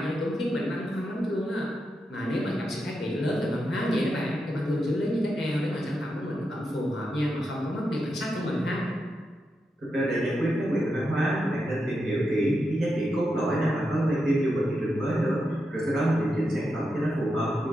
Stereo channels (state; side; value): normal; both; correlation 0.86